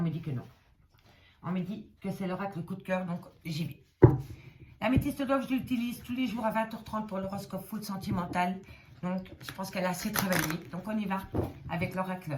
me dit que non. On me dit que c'est l'oracle coup de cœur, donc j'y vais. L'améthyste love, je l'utilise tous les jours à 20h30 pour l'horoscope full sentimental. Donc, je pense qu'elle a assez travaillé. Donc, on y va avec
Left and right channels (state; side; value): identical; both; correlation 1.00